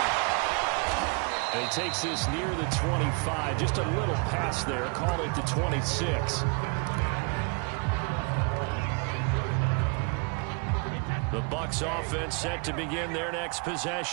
And he takes this near the 25. Just a little pass there. Call it the 26. The Bucs offense set to begin their next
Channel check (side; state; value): left; quieter; 33.7 dB